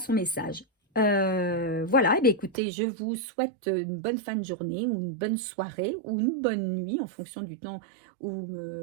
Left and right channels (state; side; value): drops out; left; at 2.6 s